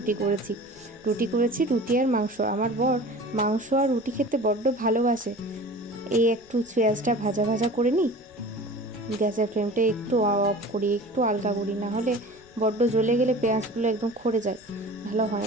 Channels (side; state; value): left; noise; rumble, 28 dB below the sound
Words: করেছি। রুটি আর মাংস। আমার বর মাংস আর রুটি খেতে বড্ড ভালোবাসে। এই একটু পেঁয়াজটা ভাজা ভাজা করে নিই, গ্যাসের ফ্লেমটা একটু অফ করি, একটু আলগা করি, না হলে বড্ড জ্বলে গেলে পেঁয়াজগুলো একদম খড়ে যায়, ভালো হয়